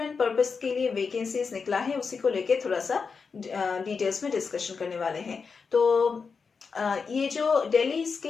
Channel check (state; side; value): quieter; right; 5.3 dB